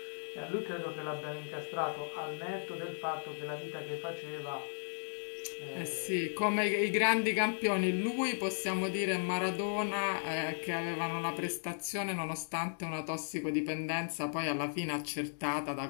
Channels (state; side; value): silent; right; digital silence